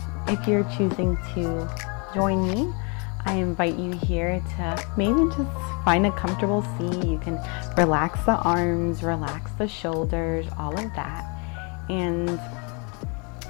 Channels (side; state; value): right; quieter; 34.4 dB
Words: if you're choosing to join me, I invite you here to maybe just find a comfortable seat. You can relax the arms, relax the shoulders, all of that. And